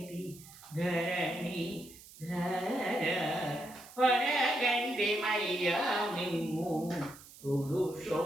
ధరణి ధర వరగండి మయ్యా మిమ్ము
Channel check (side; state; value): right; noise; hiss, 19 dB below the sound